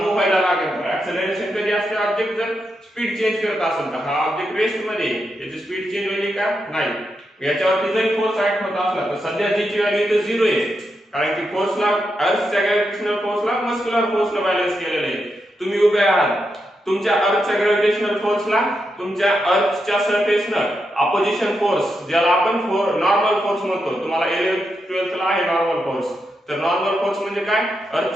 व्हायला लागेल. ऍक्सेलरेशन कधी असते? ऑब्जेक्ट जर स्पीड चेंज करत असेल तर हा ऑब्जेक्ट रेस्ट मध्ये याची स्पीड चेंज होईल का? नाही. याच्यावरती जर फोर्स ऍक्ट होत असला तर सध्या जी ची व्हॅल्यू इथे 0 आहे, कारण की फोर्सला अर्थच्या ग्रॅव्हिटेशनल फोर्सला मस्क्युलर फोर्सला बॅलन्स केलेले आहे. तुम्ही उभे आहात, तुमच्या अर्थच्या ग्रॅव्हिटेशनल फोर्सला तुमच्या अर्थच्या सरफेसनं अपोजिशन फोर्स, ज्याला आपण नॉर्मल फोर्स म्हणतो, तुम्हाला 11th 12th ला आहे नॉर्मल फोर्स. तर नॉर्मल फोर्स म्हणजे काय?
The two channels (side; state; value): both; normal; correlation 0.85